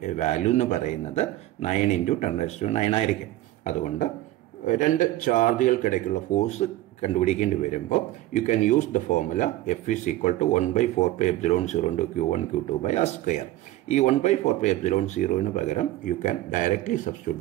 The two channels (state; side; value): quieter; left; 15.6 dB